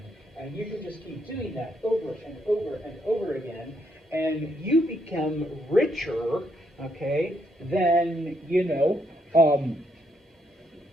And you can just keep doing that over and over and over again. And you become richer, okay, than,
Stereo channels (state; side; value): normal; both; correlation 0.75